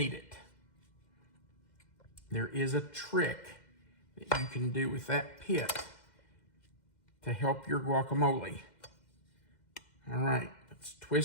it. There is a trick that you can do with that pit to help your guacamole. All right, let's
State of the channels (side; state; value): right; late; 2.1 ms